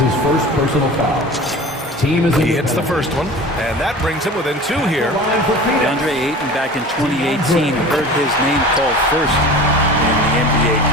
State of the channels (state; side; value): normal; both; correlation 0.38